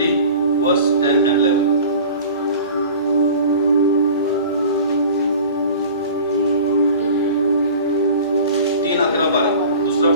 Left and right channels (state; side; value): inverted; both; correlation -0.40